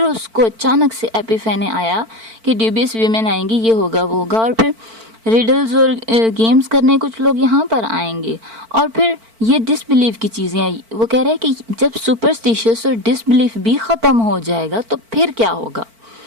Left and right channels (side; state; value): left; late; 4.5 ms